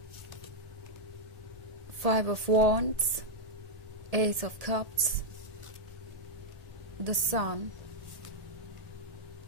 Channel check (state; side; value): late; left; 1.8 ms